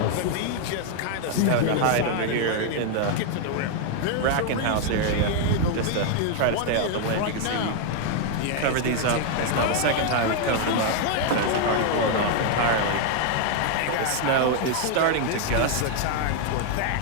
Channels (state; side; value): different; both; correlation 0.00